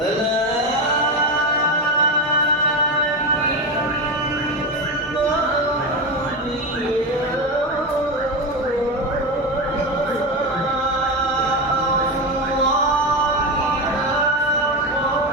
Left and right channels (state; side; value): normal; both; correlation 0.16